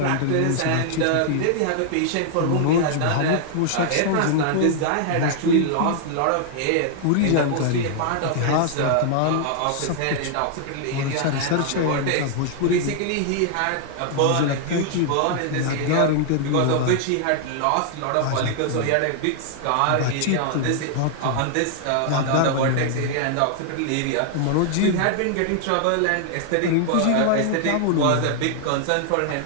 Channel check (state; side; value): different; both; correlation 0.00